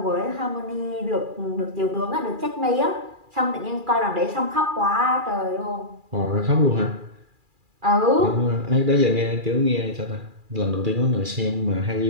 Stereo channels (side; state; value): left; late; 2.4 ms